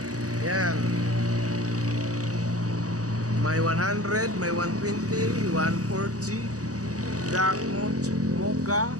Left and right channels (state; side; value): late; left; 0.66 ms